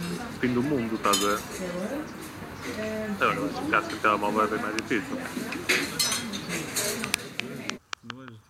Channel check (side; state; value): both; identical; correlation 1.00